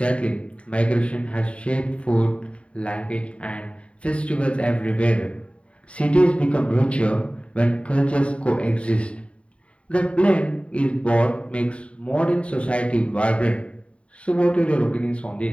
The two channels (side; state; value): right; late; 0.062 ms